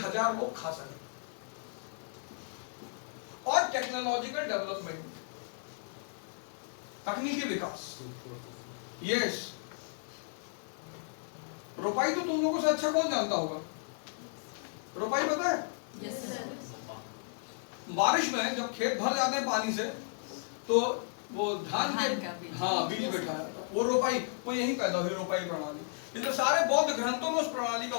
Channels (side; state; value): right; silent; digital silence